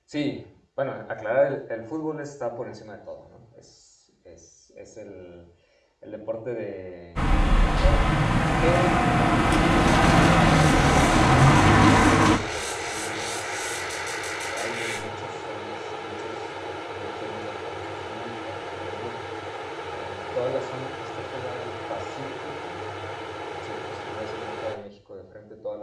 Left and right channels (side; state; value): both; identical; correlation 1.00